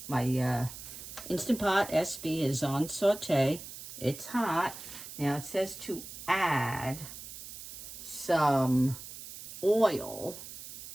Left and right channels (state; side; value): noise; right; hiss, 12 dB below the sound